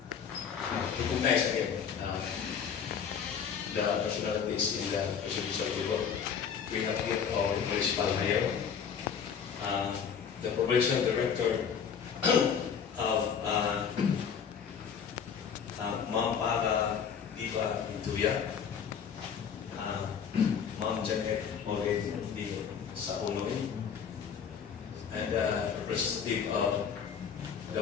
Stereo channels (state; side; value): quieter; right; 7.2 dB